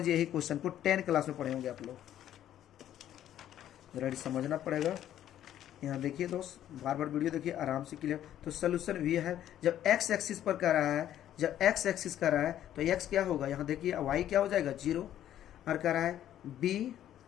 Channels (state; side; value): quieter; right; 11.5 dB